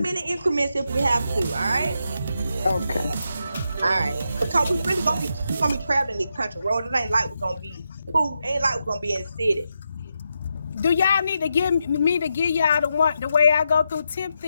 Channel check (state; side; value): inverted; both; correlation -0.85